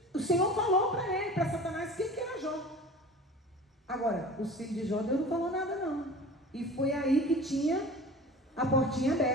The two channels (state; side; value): normal; both; correlation 0.39